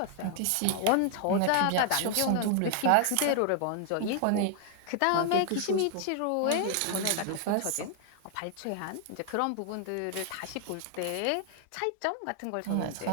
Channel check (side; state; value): both; different; correlation 0.00